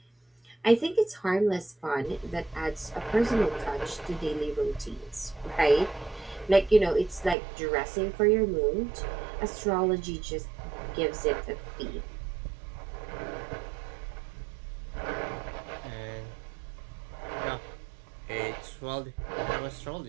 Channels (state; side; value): drops out; left; at 7.4 s